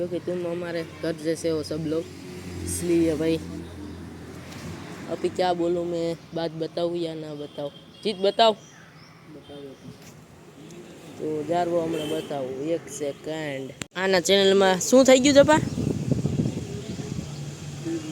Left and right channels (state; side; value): identical; both; correlation 1.00